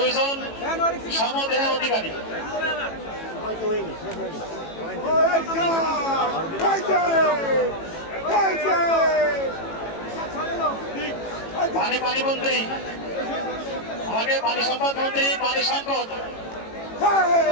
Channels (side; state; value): right; late; 18 ms